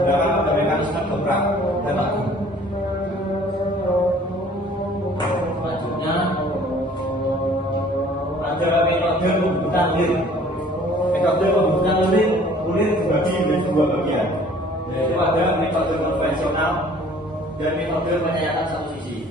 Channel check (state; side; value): normal; both; correlation 0.53